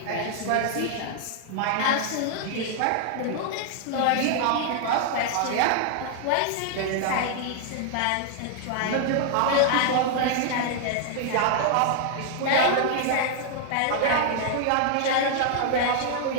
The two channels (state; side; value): different; both; correlation 0.00